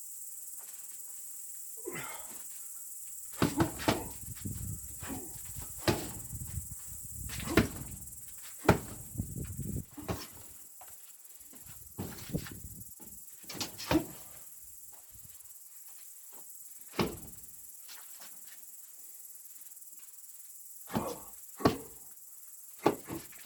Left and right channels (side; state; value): both; identical; correlation 1.00